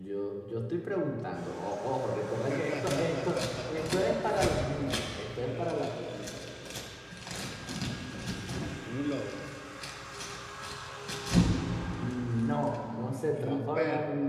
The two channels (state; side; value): identical; both; correlation 1.00